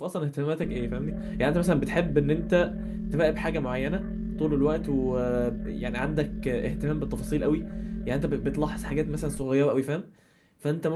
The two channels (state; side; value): identical; both; correlation 1.00